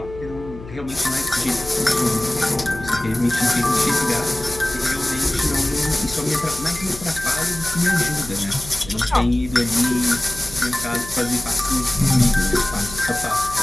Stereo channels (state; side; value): noise; left; hum, 15 dB below the sound